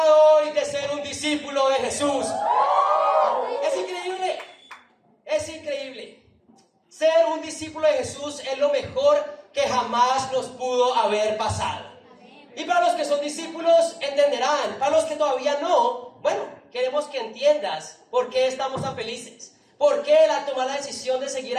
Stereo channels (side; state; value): both; identical; correlation 1.00